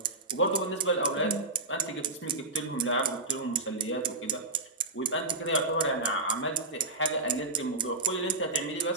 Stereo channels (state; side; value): quieter; left; 3.1 dB